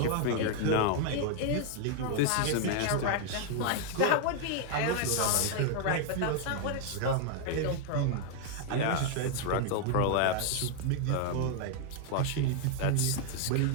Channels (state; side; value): different; both; correlation 0.00